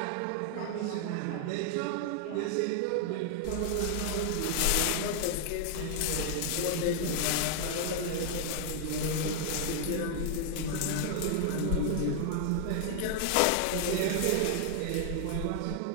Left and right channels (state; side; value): different; both; correlation 0.00